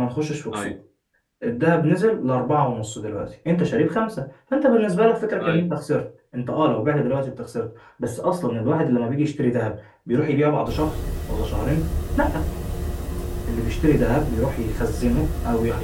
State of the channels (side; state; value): both; identical; correlation 1.00